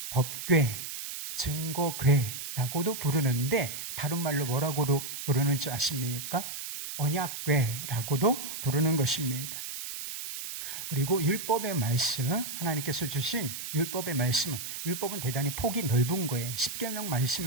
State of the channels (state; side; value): noise; right; hiss, 7 dB below the sound